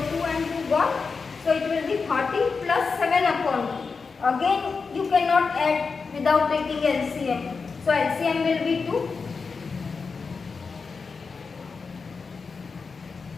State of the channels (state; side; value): quieter; right; 4.9 dB